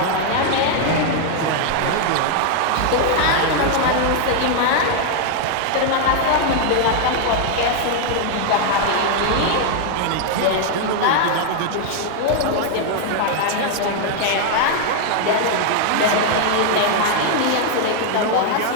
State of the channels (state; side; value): different; both; correlation 0.00